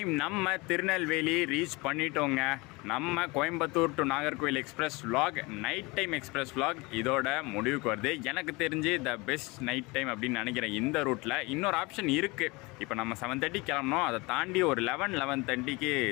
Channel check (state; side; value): quieter; right; 24.9 dB